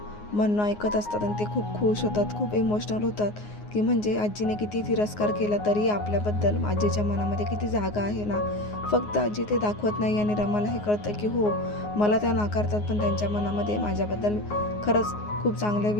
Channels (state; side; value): late; right; 9.6 ms